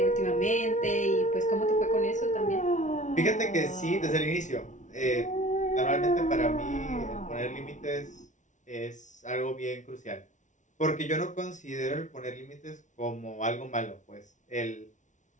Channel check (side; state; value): right; late; 0.36 ms